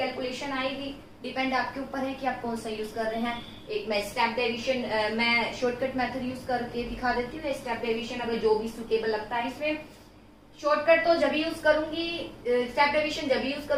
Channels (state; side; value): identical; both; correlation 1.00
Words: आएगी। डिपेंड आपके ऊपर है कि आप कौन सा यूज कर रहे हैं। एक मैं स्टेप डेविएशन, मैं शॉर्टकट मेथड यूज करके दिखा देती हूँ। स्टेप डेविएशन अगर जो भी सुटेबल लगता है इसमें, शॉर्टकट तो जब यूज करूंगी, स्टेप डेविएशन जब यूज